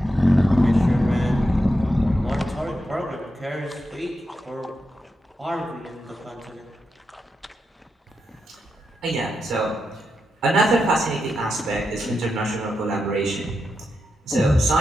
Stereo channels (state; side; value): normal; both; correlation 0.86